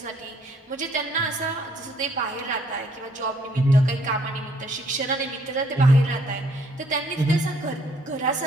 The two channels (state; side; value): normal; both; correlation 0.65